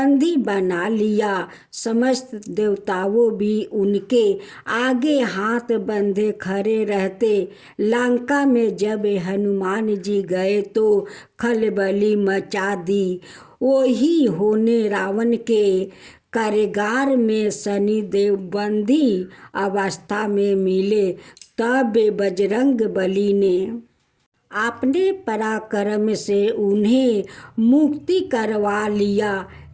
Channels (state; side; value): identical; both; correlation 1.00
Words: बना लिया। समस्त देवताओं भी उनके आगे हाथ बंधे खड़े रहते। लंका में जब हनुमान जी गए तो खलबली मचा दी। वही होने रावण के कारागार में शनिदेव बंदी अवस्था में मिले। तब बजरंग बली ने अपने पराक्रम से उन्हें मुक्ति करवा लिया।